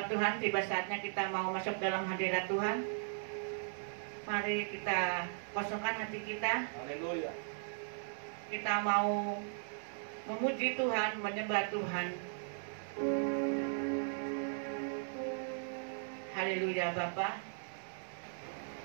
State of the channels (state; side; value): silent; left; digital silence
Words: Tuhan, tiba saatnya kita mau masuk dalam hadirat Tuhan. Mari kita kosongkan hati kita. Haleluya. Kita mau memuji Tuhan, menyembah Tuhan. Haleluya Bapa.